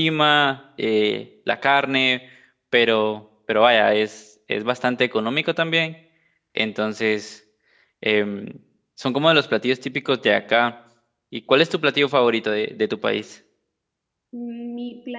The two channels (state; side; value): identical; both; correlation 1.00